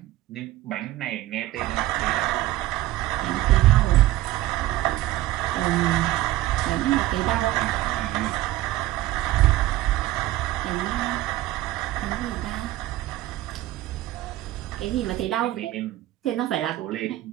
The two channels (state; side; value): quieter; left; 16.0 dB